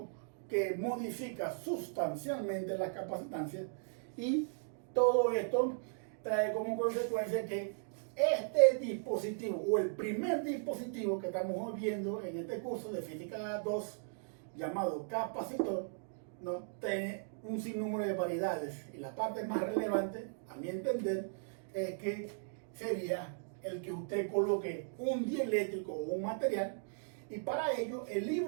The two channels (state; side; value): silent; left; digital silence